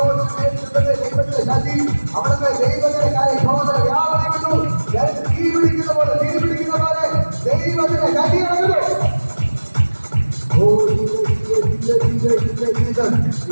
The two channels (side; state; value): both; inverted; correlation -1.00